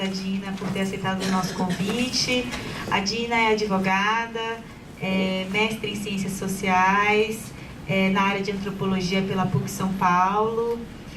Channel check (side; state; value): both; identical; correlation 1.00